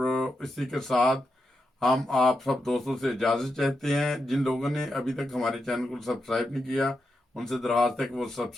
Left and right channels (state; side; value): normal; both; correlation 0.86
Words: اسی کے ساتھ ہم آپ سب دوستوں سے اجازت چاہتے ہیں. جن لوگوں نے ابھی تک ہمارے چینل کو سبسکرائب نہیں کیا ان سے درخواست ہے کہ وہ